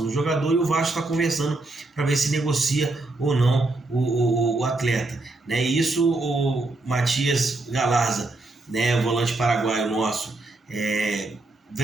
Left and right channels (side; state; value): left; quieter; 3.0 dB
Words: do jogador, e o Vasco está conversando para ver se negocia ou não o atleta, né? E isso o Matias Galarza, né, o volante paraguaio nosso,